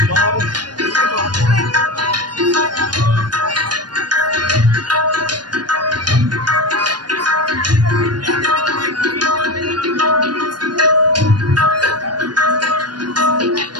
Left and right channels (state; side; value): late; left; 0.70 ms